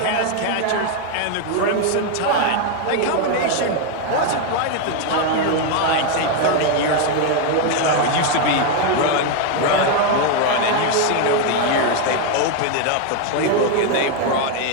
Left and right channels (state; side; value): different; both; correlation 0.01